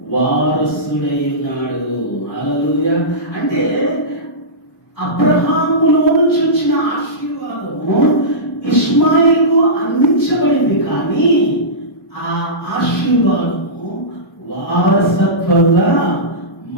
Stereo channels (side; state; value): both; normal; correlation -0.18